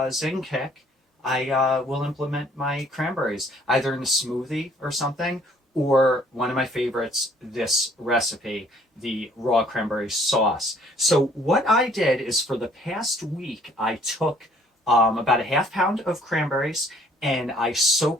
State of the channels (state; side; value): normal; both; correlation 0.59